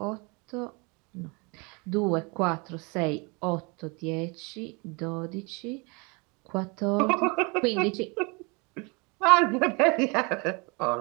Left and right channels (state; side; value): quieter; left; 29.9 dB